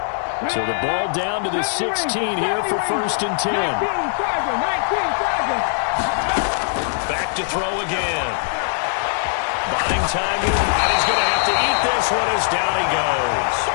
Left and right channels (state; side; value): silent; right; digital silence